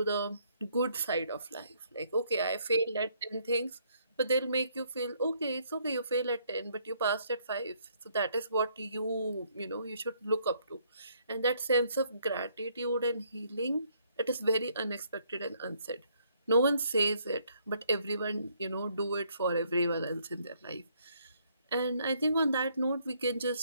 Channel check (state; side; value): inverted; both; correlation -0.68